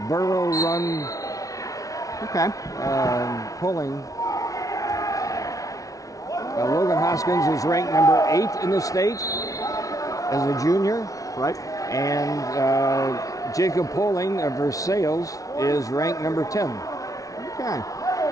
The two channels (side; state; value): right; late; 0.17 ms